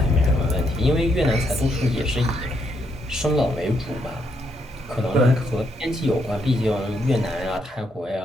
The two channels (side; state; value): both; normal; correlation 0.77